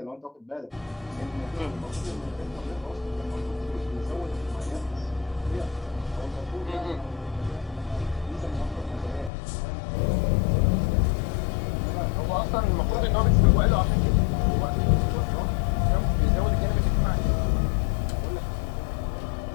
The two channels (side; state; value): right; drops out; at 9.3 s